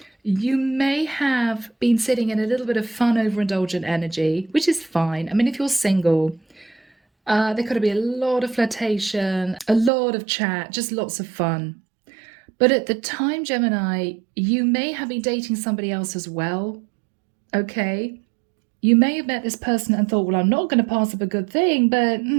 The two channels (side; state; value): left; drops out; at 9.9 s